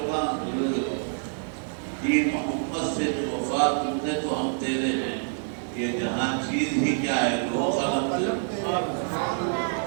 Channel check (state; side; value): silent; left; digital silence